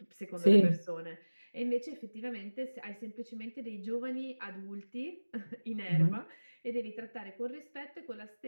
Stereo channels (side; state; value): both; inverted; correlation -1.00